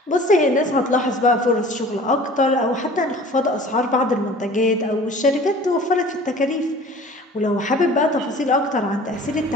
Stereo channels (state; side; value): normal; both; correlation 0.45